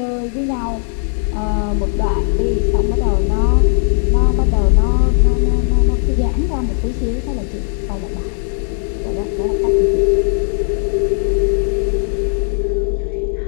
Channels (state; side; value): silent; right; digital silence